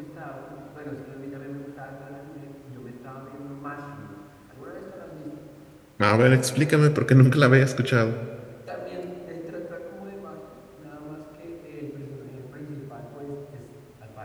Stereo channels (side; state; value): both; identical; correlation 1.00